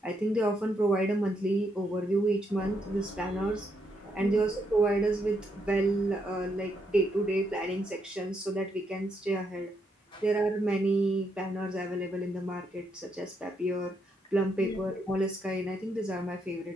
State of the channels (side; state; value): both; normal; correlation 0.78